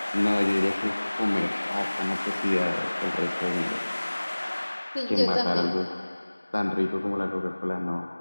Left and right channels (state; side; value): inverted; both; correlation -1.00